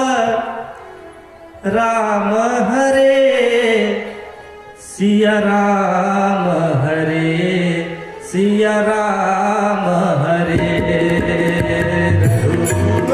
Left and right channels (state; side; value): identical; both; correlation 1.00